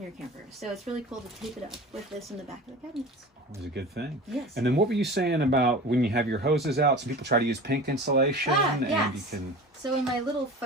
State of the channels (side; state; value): both; normal; correlation 0.36